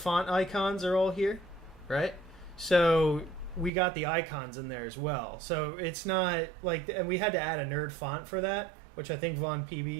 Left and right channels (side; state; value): left; drops out; at 3.7 s